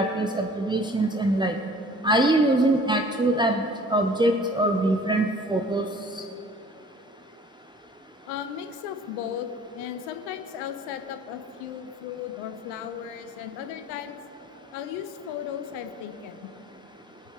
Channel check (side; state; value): both; normal; correlation 0.50